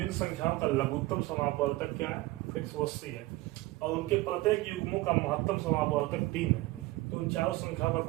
संख्याओं का लघुत्तम समापवर्तक क्या है 180 है, और उनके प्रत्येक युग्मों का महत्तम समापवर्तक 3 है, तो उन चारों संख्याओं का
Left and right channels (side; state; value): left; quieter; 19.5 dB